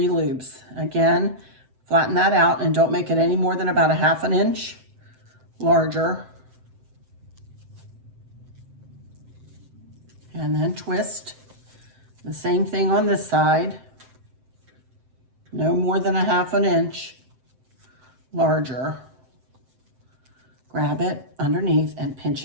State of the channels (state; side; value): late; left; 7.7 ms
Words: loops. Again, flatten that out and don't make it any more than about 1/2 inch larger. And then twist. The same thing on this side. No more than 1/2 inch larger. Grab it underneath and